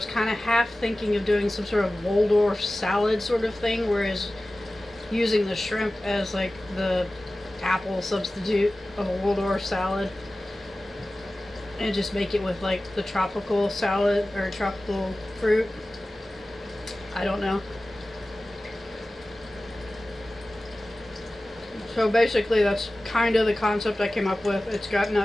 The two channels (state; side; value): normal; both; correlation 0.96